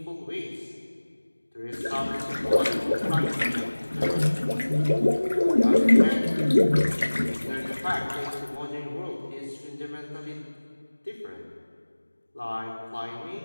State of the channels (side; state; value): both; inverted; correlation -1.00